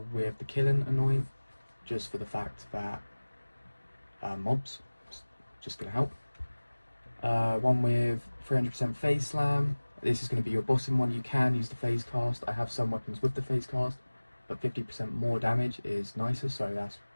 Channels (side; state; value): both; inverted; correlation -1.00